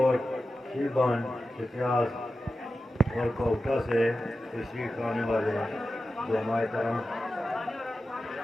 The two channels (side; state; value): both; normal; correlation 0.93